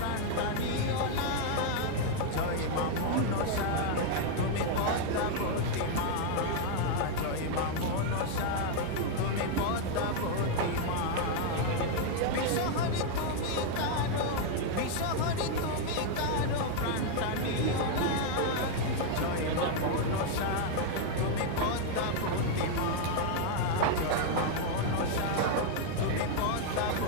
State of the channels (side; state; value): both; different; correlation 0.00